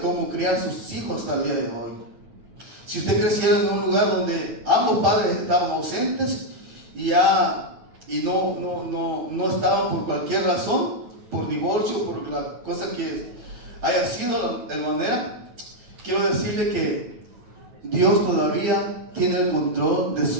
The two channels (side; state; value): left; late; 9.2 ms